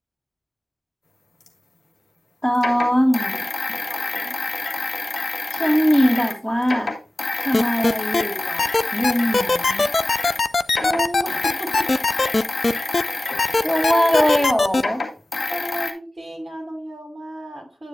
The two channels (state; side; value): normal; both; correlation 0.96